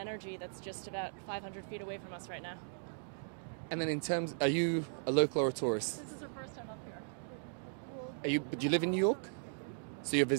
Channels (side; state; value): left; silent; digital silence